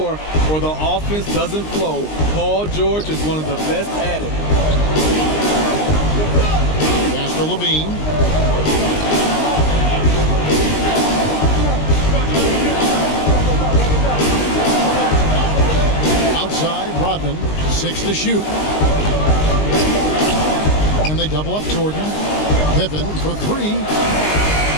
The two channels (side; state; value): right; late; 19 ms